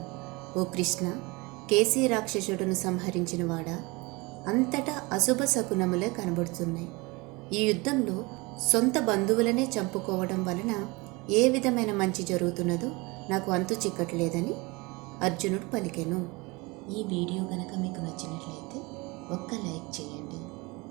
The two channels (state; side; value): quieter; left; 25.1 dB